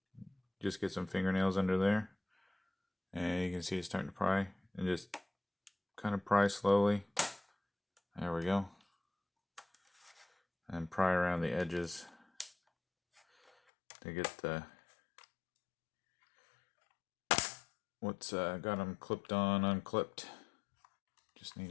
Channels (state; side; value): drops out; right; at 13.5 s